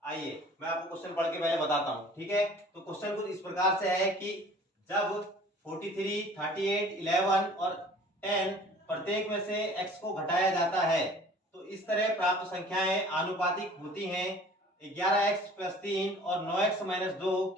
आइए मैं आपको क्वेश्चन पढ़ के पहले बताता हूं। ठीक है, तो क्वेश्चन कुछ इस प्रकार से है कि जब 43, 38, 11 और 10 प्रत्येक में से x को घटाया जाता है तो इस तरह प्राप्त संख्याएं आनुपातिक होती हैं। 11x प्लस 3 और 9x माइनस 2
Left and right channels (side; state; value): both; normal; correlation 0.49